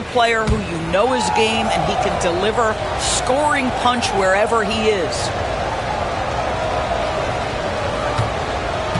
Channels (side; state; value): both; identical; correlation 1.00